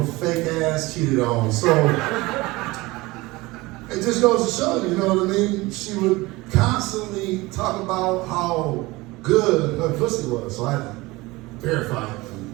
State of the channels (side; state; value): left; quieter; 21.4 dB